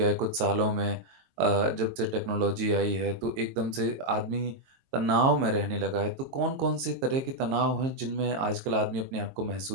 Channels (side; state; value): left; late; 22 ms